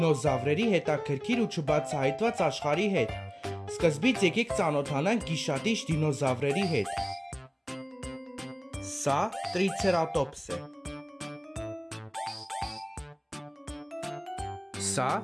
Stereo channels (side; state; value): both; identical; correlation 1.00